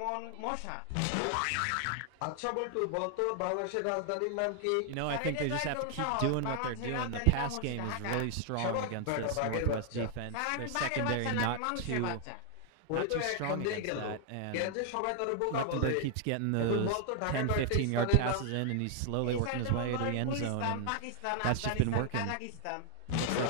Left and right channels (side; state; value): both; different; correlation 0.00